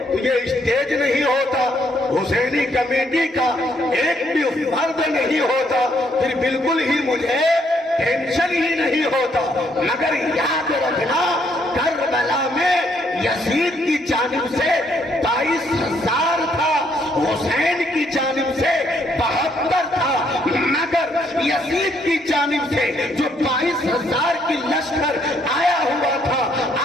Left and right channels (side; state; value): both; normal; correlation 0.71